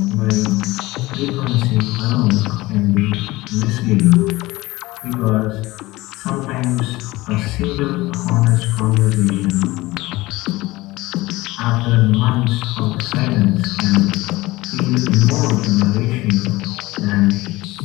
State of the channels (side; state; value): right; quieter; 19.8 dB